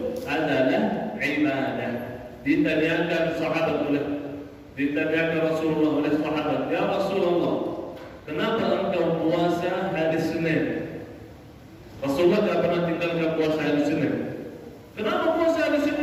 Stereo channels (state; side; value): identical; both; correlation 1.00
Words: adalah ibadah. Ditanyakan Rasulullah oleh sahabat, ya Rasulullah, kenapa engkau puasa hari Senin? Rasulullah tidak pernah tinggalkan puasa hari Senin. Kenapa puasa hari